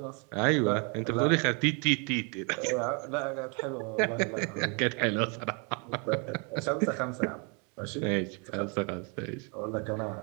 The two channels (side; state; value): left; quieter; 35.1 dB